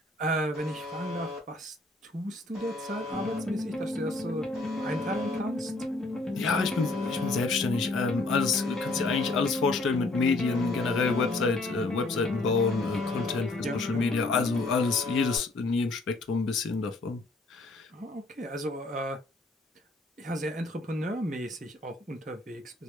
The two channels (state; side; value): quieter; right; 3.0 dB